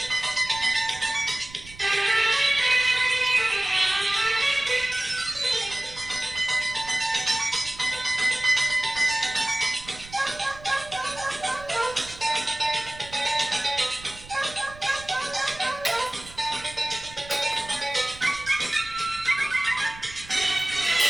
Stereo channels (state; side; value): noise; right; rumble, 18 dB below the sound